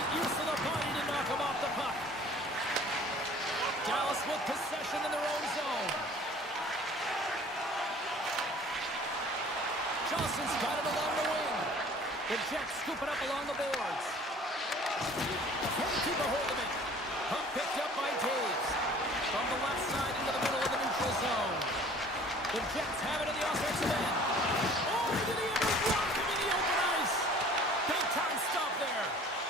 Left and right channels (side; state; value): both; normal; correlation 0.50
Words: use of the body to knock him off the puck. Dallas with possession in their own zone. Johnson's got it along the wing. The Jets scoop it up along the boards. Can't keep a hold of it. Puck picked up by Taves. From the left side into the middle of the neutral zone. The Jets have it in the offensive end. Oh, did he ever block him in the open ice? Big time stop there.